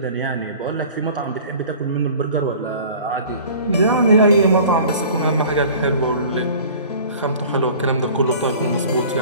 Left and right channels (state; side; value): inverted; both; correlation -0.45